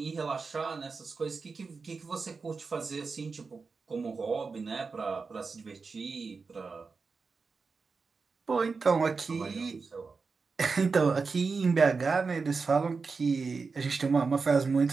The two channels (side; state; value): left; quieter; 4.6 dB